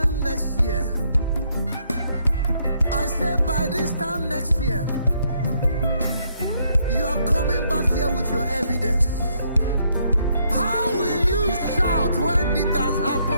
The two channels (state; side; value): inverted; both; correlation -0.72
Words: next year, I said by this time next year, you are coming back here with your evidence. How will you shout when it has